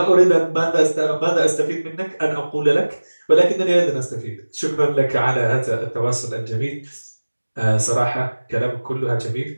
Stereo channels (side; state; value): both; inverted; correlation -1.00